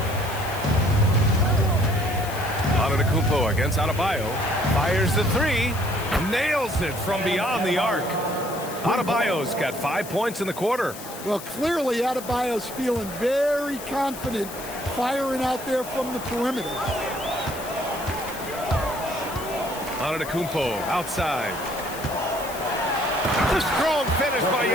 Antetokounmpo against Adebayo. Fires the 3. Nails it from beyond the arc. Adebayo's got 5 points in the quarter. Well, clearly Adebayo's feeling very confident firing out there from the perimeter. Antetokounmpo outside. The strong finish by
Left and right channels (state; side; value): noise; left; hiss, 13 dB below the sound